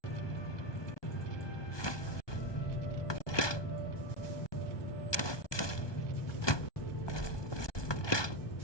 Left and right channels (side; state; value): right; late; 1.2 ms